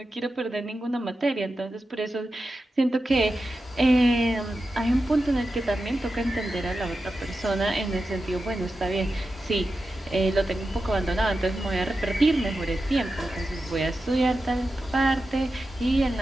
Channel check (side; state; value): both; normal; correlation 0.91